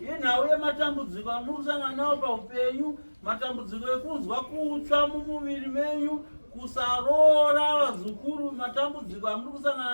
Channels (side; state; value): both; inverted; correlation -1.00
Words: iyi nhau yematambudziko amuri kusangana nawo paupenyu, matambudziko ekunzwa kutsva mumuviri menyu, kusarora vazukuru, matambudziko amuri